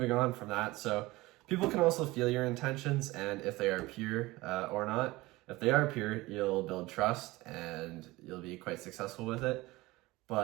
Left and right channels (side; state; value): left; quieter; 20.3 dB